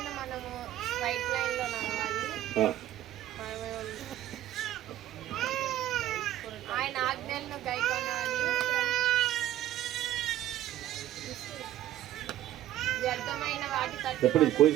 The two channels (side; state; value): left; quieter; 13.2 dB